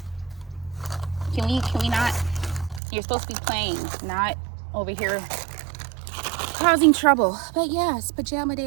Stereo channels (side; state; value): left; drops out; at 2.8 s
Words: can we not? You're supposed to be playing, not over here causing trouble. But yes, pajama